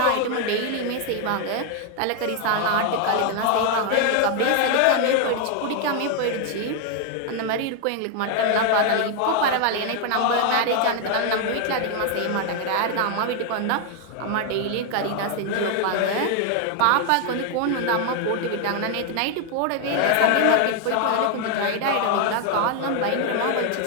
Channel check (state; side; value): different; both; correlation 0.00